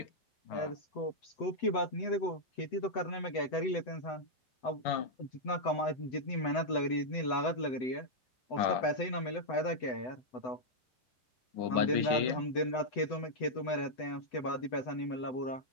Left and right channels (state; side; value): late; right; 7.9 ms